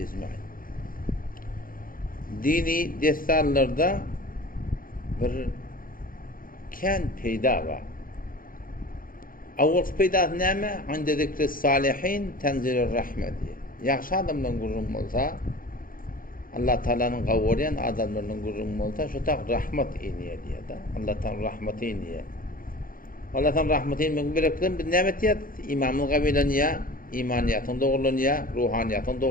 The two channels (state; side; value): late; right; 0.41 ms